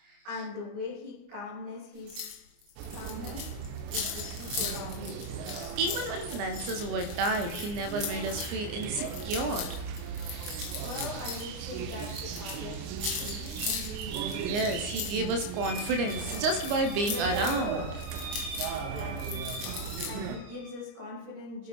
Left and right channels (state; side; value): late; left; 29 ms